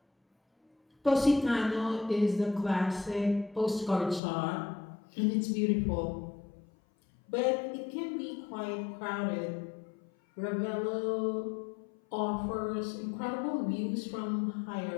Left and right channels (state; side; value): drops out; right; at 4.2 s